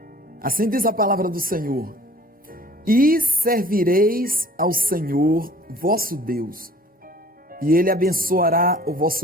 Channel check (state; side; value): normal; both; correlation 0.50